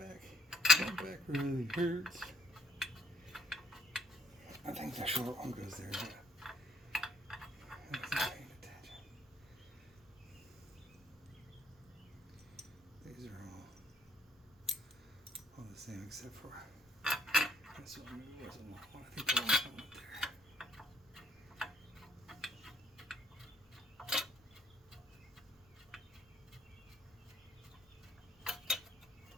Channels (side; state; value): both; normal; correlation 0.67